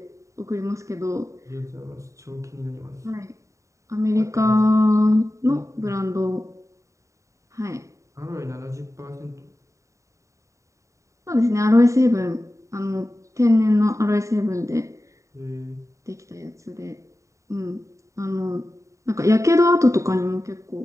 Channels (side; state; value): left; late; 0.15 ms